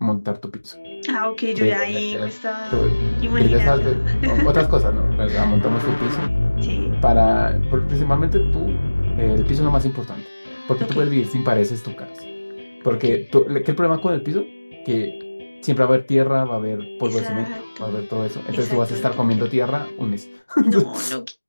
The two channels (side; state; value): both; inverted; correlation -1.00